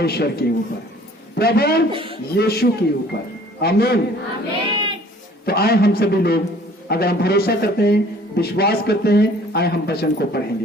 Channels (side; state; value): both; normal; correlation 0.53